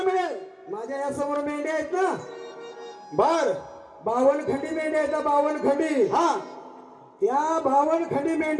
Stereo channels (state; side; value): identical; both; correlation 1.00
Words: मिळेल. माझ्या या समोर मेंढ्या आहेत ना बर 52 खंडी मेंढ्या आहेत 52 खंडी. हा त्या 52 खंडी